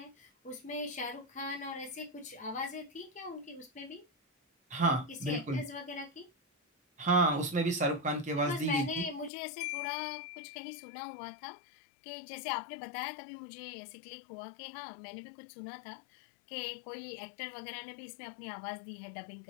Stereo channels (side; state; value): right; drops out; at 9.3 s